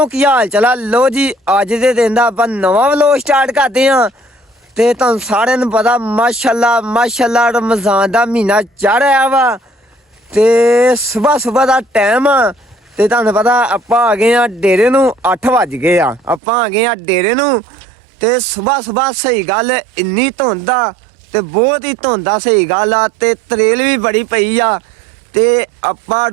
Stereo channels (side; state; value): left; drops out; at 16.4 s